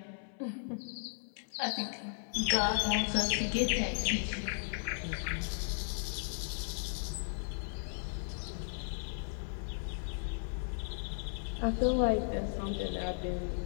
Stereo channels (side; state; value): right; silent; 54 dB below the other